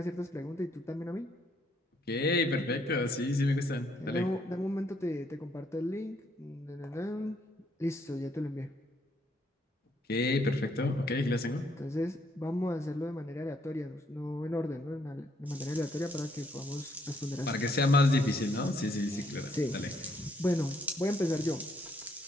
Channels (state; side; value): normal; both; correlation 0.70